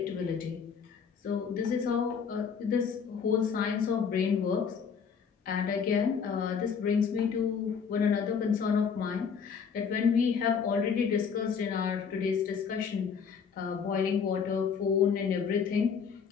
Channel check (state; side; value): quieter; right; 6.5 dB